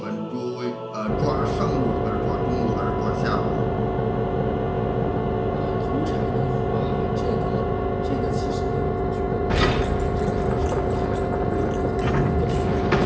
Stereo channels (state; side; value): identical; both; correlation 1.00